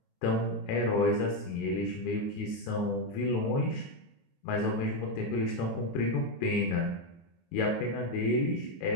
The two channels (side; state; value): right; late; 22 ms